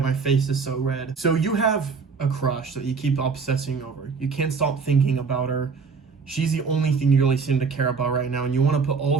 face is so red. So you have a crush that you keep obsessing over. You can't stop thinking about her. She's the only thing you really seem to care about right now, and you want to put all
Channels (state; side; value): quieter; left; 5.2 dB